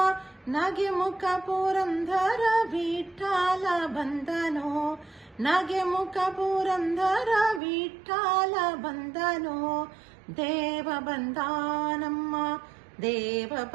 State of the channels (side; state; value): left; drops out; at 7.6 s